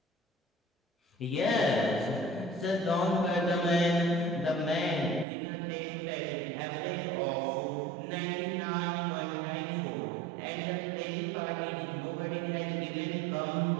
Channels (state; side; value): drops out; left; at 5.2 s